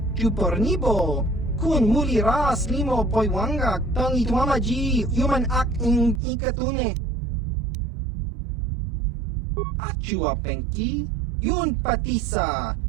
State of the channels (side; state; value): left; drops out; at 6.2 s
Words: chupornibo, kun muli ras limo poiwanga, tong itwamaji human ak in ikatune. Achua penki, yun patisa,